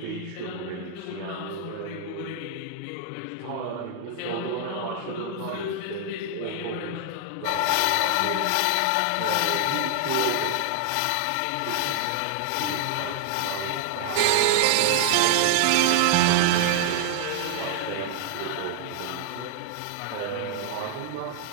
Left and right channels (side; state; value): both; different; correlation 0.00